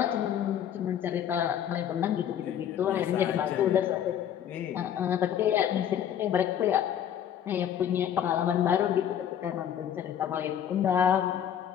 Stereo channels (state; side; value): quieter; right; 9.7 dB